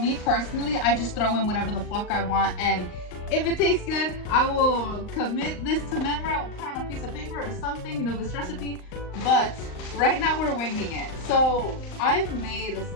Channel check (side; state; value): right; late; 39 ms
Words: personally, I just throw in whatever the fuck I want, and if it tastes good, I will commit this to memory. I will put on a piece of paper or something, you know, this recipe. But right now we're winging it. So I've made